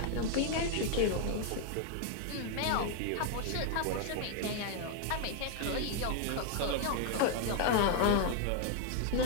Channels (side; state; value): both; different; correlation 0.00